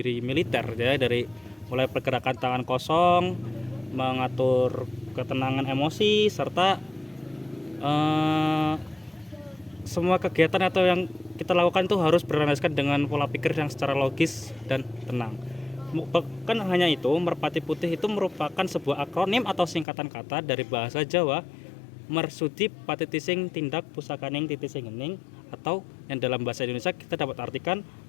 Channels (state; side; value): drops out; right; at 19.9 s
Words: militer ya, dari mulai pergerakan tangan kosong, mengatur ketenangan emosi, serta semua kegiatan atau yang kita lakukan itu harus berlandaskan dengan pola pikir yang secara logis dan tenang. Bukan hanya itu, Merpati Putih itu merupakan sebuah akronim atau singkatan kata dari bahasa Jawa, Mersudi Patitising Tindak Pusakaning Titising Ening, atau yang dalam bahasa Indonesia kita dapat artikan